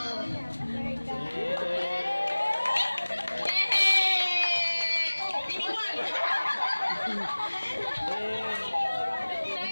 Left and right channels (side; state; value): both; inverted; correlation -1.00